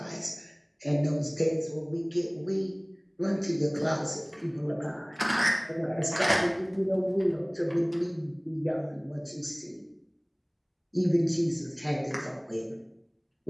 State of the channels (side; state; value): both; identical; correlation 1.00